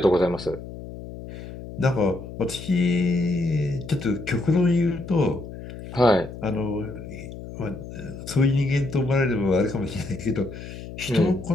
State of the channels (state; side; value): noise; left; hum, 12 dB below the sound